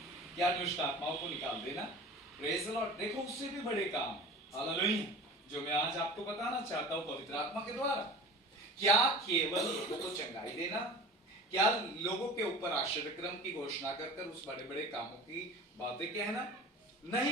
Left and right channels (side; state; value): both; normal; correlation 0.38